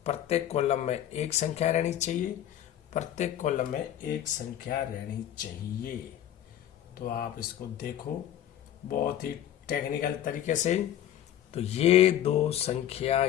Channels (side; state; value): right; quieter; 11.3 dB